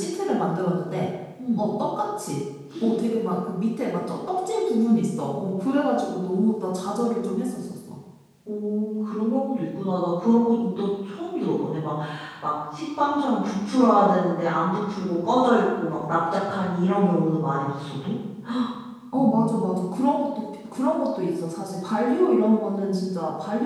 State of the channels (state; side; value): identical; both; correlation 1.00